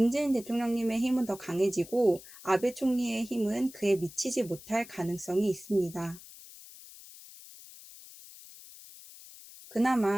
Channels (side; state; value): left; noise; hiss, 18 dB below the sound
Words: 대통령님의 힘은 더 강해지고 아베 총리의 힘은 그에 미치지 못할 가능성이 있습니다.